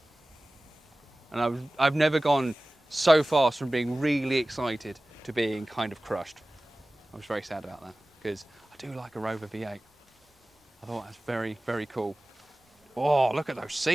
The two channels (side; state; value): both; normal; correlation 0.97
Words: And I've never gone so fast from being really excited to being kind of crushed. I was very sad about that because I do like a Rover V8. I thought that's very, very cool. Oh, look at those